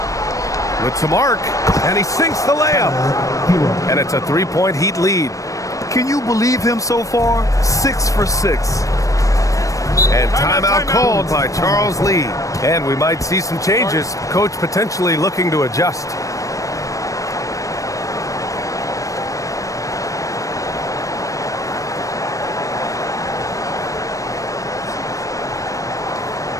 With some arc. And he sinks the layup. And it's a 3-point Heat lead. Can you believe him so far? 6 for 6. And timeout called by Charles Lee. And we might see some changes. Coach potentially looking to adjust.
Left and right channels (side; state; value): right; late; 0.16 ms